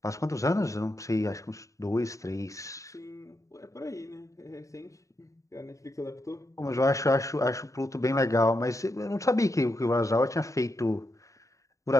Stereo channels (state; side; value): late; right; 0.16 ms